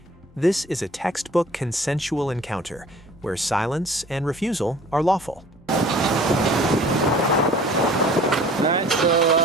This is a textbook consensual encounter, where silence and refusal are lawful. Alright,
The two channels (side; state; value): both; normal; correlation 0.49